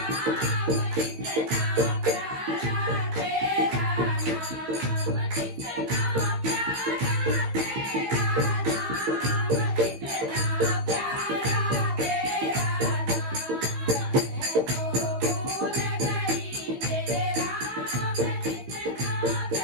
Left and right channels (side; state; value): left; late; 15 ms